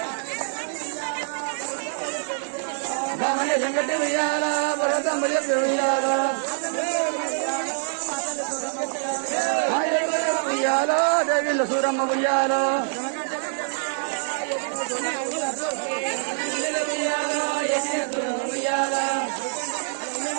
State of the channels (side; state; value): left; silent; digital silence